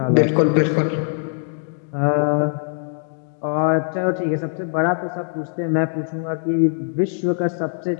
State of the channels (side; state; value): right; silent; digital silence